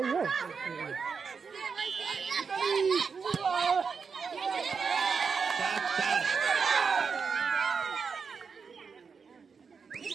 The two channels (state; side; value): quieter; left; 5.6 dB